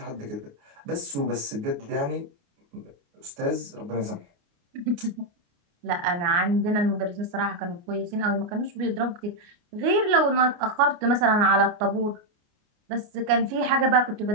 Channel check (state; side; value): late; left; 29 ms